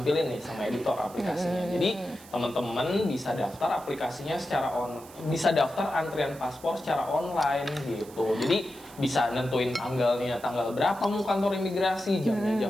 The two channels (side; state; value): right; noise; hiss, 21 dB below the sound